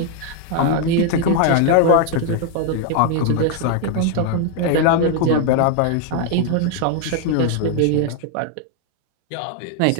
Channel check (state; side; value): different; both; correlation 0.00